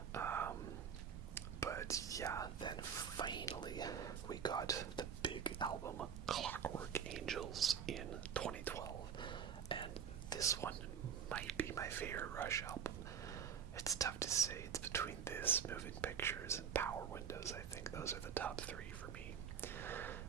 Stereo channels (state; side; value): quieter; left; 7.6 dB